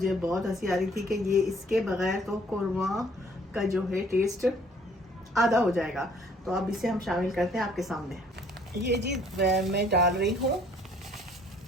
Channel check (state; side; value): normal; both; correlation 0.59